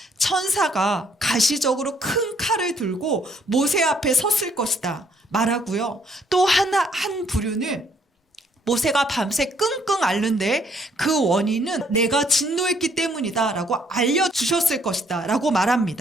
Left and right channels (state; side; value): normal; both; correlation 0.67